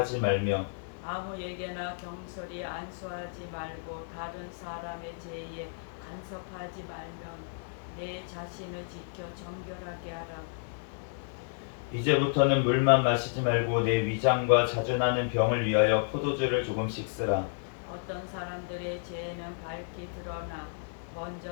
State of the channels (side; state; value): right; silent; digital silence